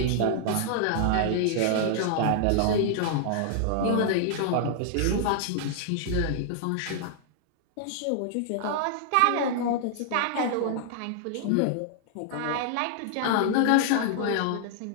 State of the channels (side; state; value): both; different; correlation -0.01